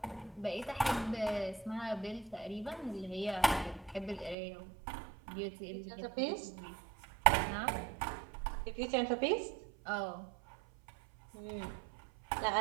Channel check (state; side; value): drops out; left; at 4.4 s